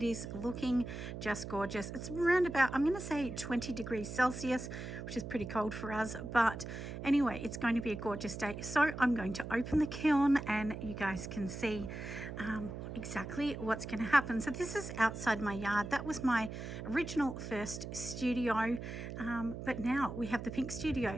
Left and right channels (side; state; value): right; noise; hum, 8 dB below the sound